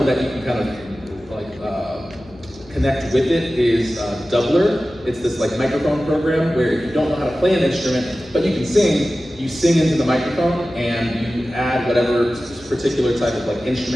that you can kind of like connect with it is Doubler. It's this like microphone program where if you don't know how to play an instrument, but you can sing, you sing into the microphone and you add whatever particular type of like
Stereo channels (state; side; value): noise; left; hum, 23 dB below the sound